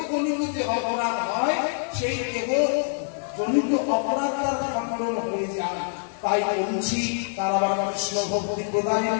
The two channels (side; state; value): right; silent; digital silence